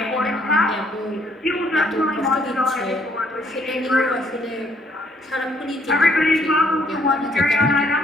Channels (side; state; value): both; normal; correlation 0.67